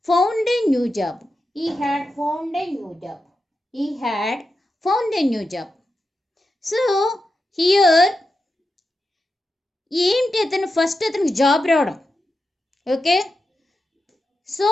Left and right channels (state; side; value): normal; both; correlation 0.89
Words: found a new job. He had found a new job. He had found a new job. So here ఏంటి అతను ఫస్ట్ అతనికి job రావడం. Okay, so